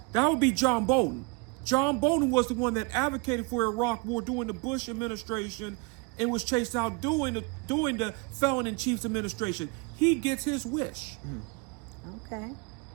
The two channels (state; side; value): quieter; left; 29.0 dB